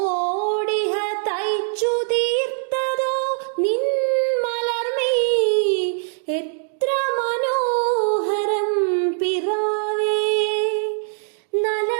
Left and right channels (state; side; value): silent; left; 64 dB below the other